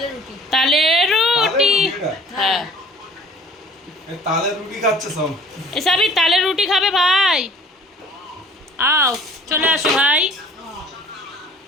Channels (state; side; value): normal; both; correlation 0.50